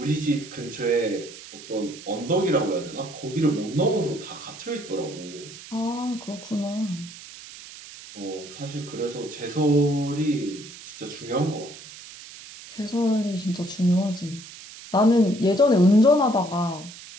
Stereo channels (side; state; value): right; noise; hiss, 16 dB below the sound